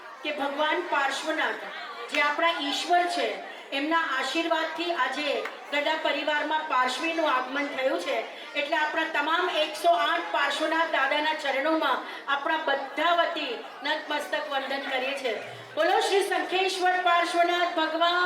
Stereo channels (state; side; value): identical; both; correlation 1.00